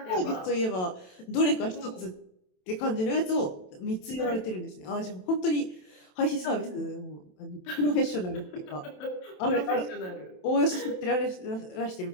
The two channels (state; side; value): late; right; 27 ms